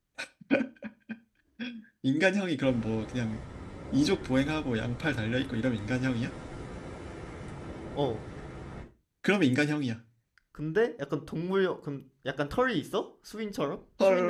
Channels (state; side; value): identical; both; correlation 1.00